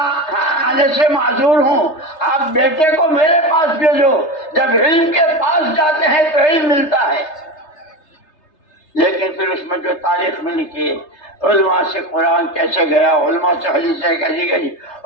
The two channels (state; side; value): late; right; 3.3 ms